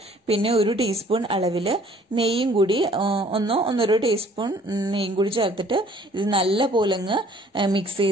പിന്നെ 1 ടീസ്പൂൺ അളവില് നെയ്യും കൂടി 1-1.5 ടീസ്പൂൺ നെയ്യും കൂടി ചേർത്തിട്ട് ഇത് നല്ല പോലെ അങ്ങ് മിക്സ്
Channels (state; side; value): normal; both; correlation 0.56